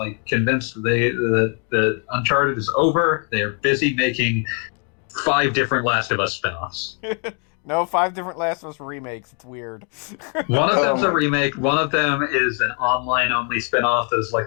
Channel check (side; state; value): right; quieter; 39.0 dB